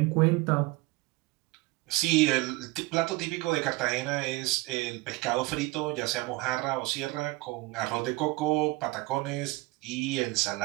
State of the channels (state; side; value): quieter; left; 21.9 dB